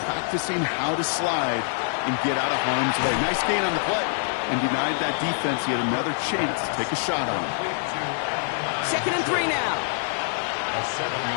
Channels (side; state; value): right; silent; digital silence